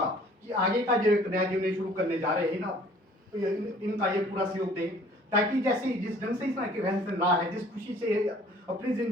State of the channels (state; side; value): normal; both; correlation 0.53